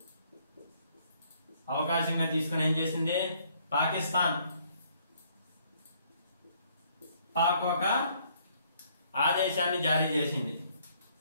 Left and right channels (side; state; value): both; inverted; correlation -0.65